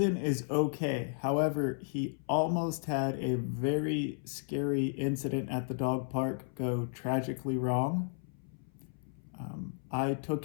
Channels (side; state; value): right; silent; 55 dB below the other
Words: is okay. However, he almost had a very scary incident at the dog park go tragically wrong. I took